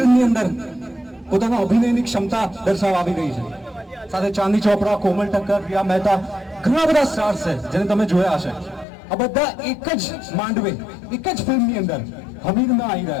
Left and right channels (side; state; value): right; drops out; at 8.8 s